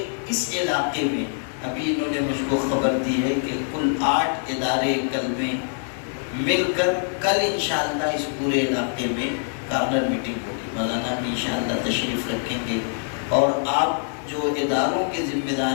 اس علاقے میں ابھی انہوں نے مجھ کو خبر دی ہے کہ کل 8 ادارے کل میں مل کر کل انشاءاللہ اس پورے علاقے میں کارنر میٹنگ ہوگی. مولانا بھی انشاءاللہ تشریف رکھیں گے، اور آپ جو اداروں کے ذمہ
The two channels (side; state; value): right; silent; 62 dB below the other